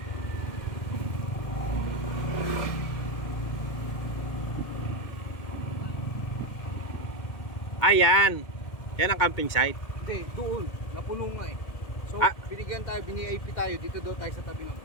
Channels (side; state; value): right; late; 2.2 ms